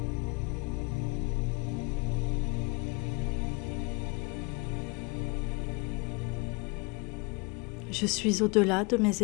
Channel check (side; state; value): right; quieter; 29.3 dB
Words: Je suis au-delà de mes